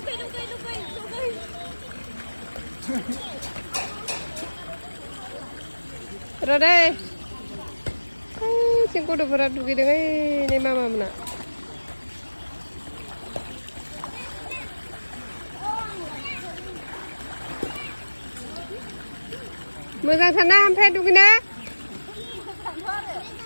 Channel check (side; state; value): both; inverted; correlation -1.00